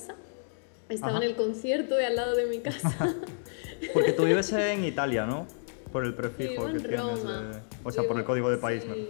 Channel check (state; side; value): silent; right; digital silence